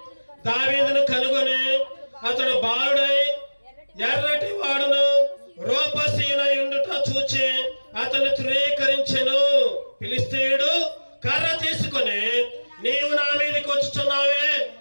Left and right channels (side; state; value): both; inverted; correlation -1.00